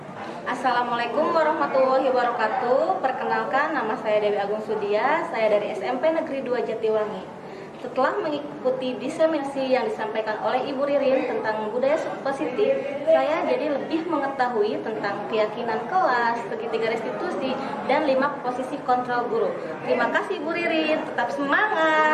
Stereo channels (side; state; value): both; identical; correlation 1.00